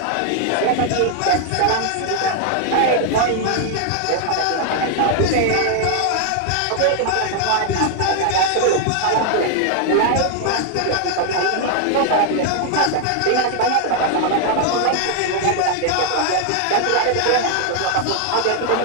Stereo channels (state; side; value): different; both; correlation 0.00